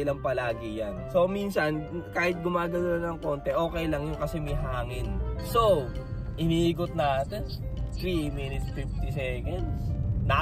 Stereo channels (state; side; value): identical; both; correlation 1.00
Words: lang palagi yan. So minsan kahit gumagano ng konti, okay lang yung kasi may hangin. So iniikot natin 3 minutes 50 seconds.